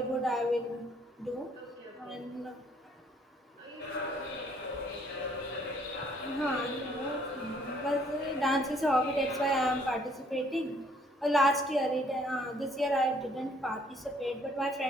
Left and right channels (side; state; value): both; normal; correlation 0.63